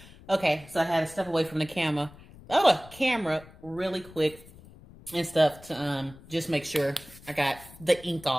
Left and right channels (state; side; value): noise; left; rumble, 21 dB below the sound